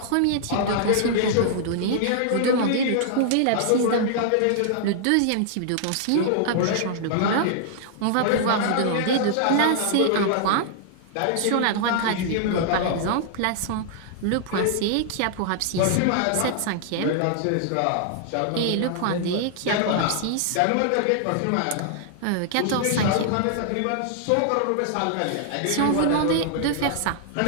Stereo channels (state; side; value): different; both; correlation -0.01